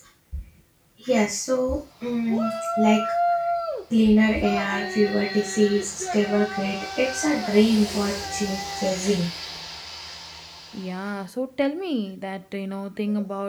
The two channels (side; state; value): both; identical; correlation 1.00